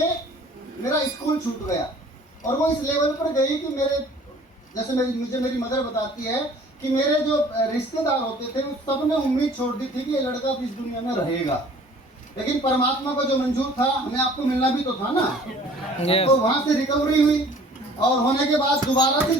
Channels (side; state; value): both; normal; correlation 0.51